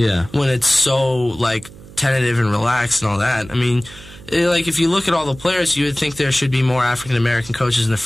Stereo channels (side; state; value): right; noise; hum, 19 dB below the sound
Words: When it's so tentative and relaxed and all that. I mean, if you look at all the players, you would think there should be more African American coaches in the